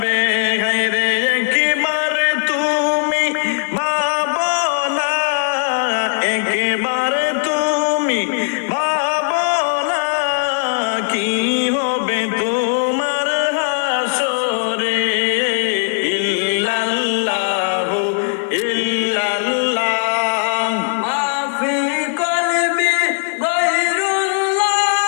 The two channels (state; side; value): silent; right; 62 dB below the other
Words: হায়রে একেবারে তুমি ভাবো না একেবারে তুমি ভাবো না কি হবে তোমার হাসরে ইল্লাল্লাহু ইল্লাল্লাহ মা ফি কলবি গায়রুল্লাহ